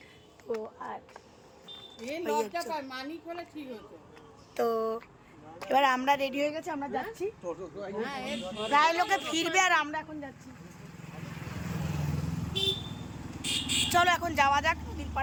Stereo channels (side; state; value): both; identical; correlation 1.00